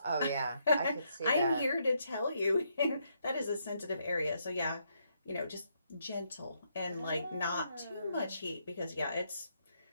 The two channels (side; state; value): both; inverted; correlation -0.76